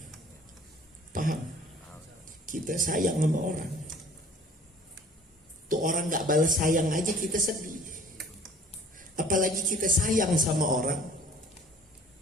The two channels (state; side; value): normal; both; correlation 0.51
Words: Paham? Kita sayang sama orang, tuh orang nggak balas sayang aja kita sedih. Apalagi kita sayang sama orang,